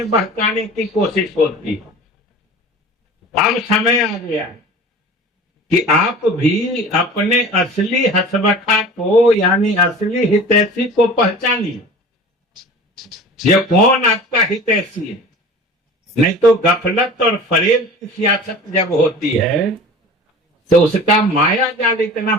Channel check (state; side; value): normal; both; correlation 0.40